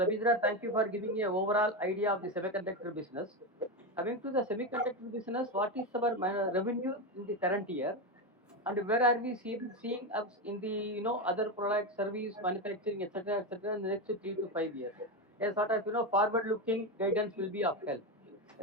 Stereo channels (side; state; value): both; normal; correlation 0.13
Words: thank you for giving me an overall idea of the semiconductor business. Coming to the semiconductor business, what is our revenue in the current year, and where are we seeing us in the other product, service, manufacturing, etc., in the next 3 to 5 years? A sort of forward-looking guidance will be of help.